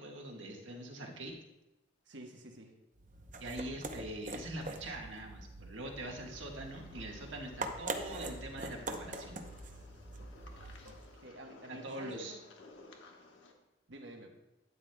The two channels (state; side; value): normal; both; correlation 0.24